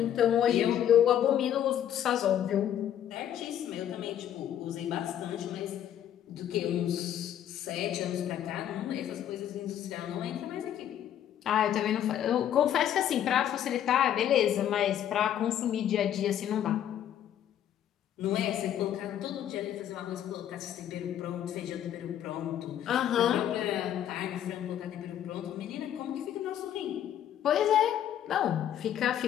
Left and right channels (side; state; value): right; quieter; 10.6 dB